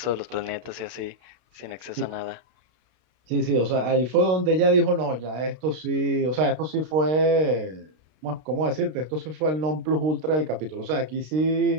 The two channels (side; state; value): left; late; 32 ms